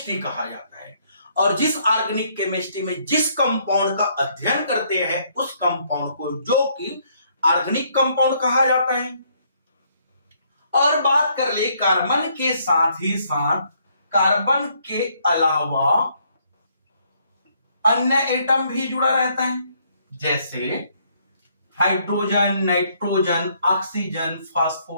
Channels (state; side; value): inverted; both; correlation -0.69